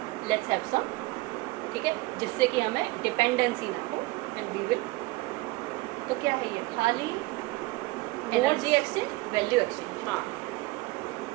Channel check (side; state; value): left; quieter; 21.5 dB